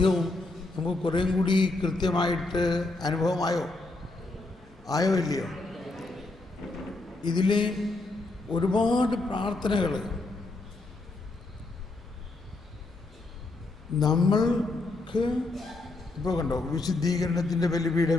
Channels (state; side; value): quieter; right; 3.1 dB